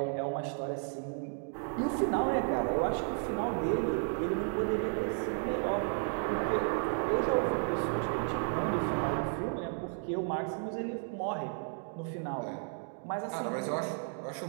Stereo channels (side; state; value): left; silent; 56 dB below the other